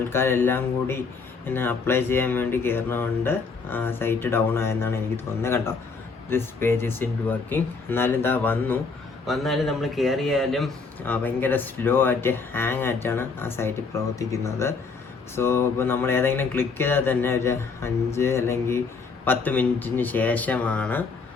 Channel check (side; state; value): right; quieter; 4.7 dB